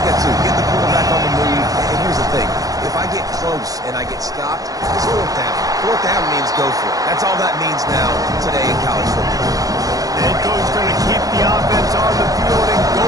that too. Get the quarterback on the move. And here's the thing. If I get close and I get stopped, it's 4th down. 4th down means go for it. That's all that means now today in college football. The head coach is going to keep the offense on the field and go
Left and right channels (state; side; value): late; left; 0.17 ms